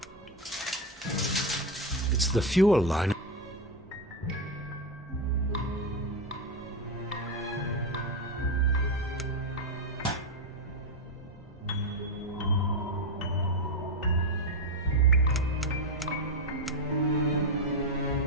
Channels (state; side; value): normal; both; correlation 0.09